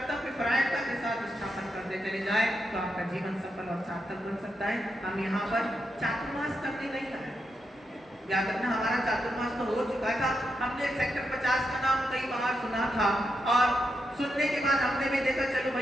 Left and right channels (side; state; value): both; normal; correlation 0.84